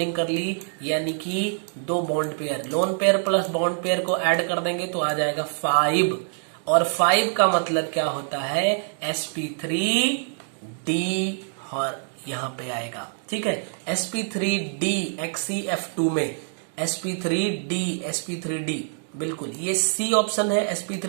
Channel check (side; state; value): left; silent; digital silence